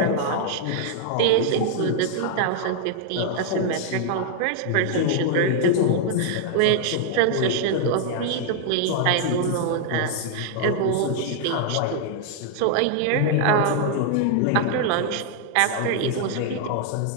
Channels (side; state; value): both; different; correlation 0.00